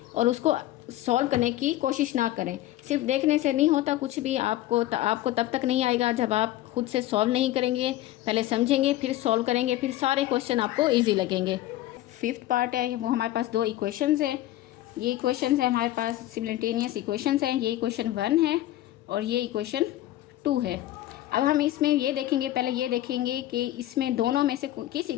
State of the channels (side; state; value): right; quieter; 14.9 dB